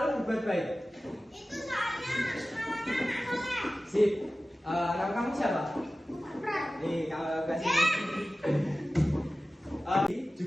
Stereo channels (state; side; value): normal; both; correlation 0.96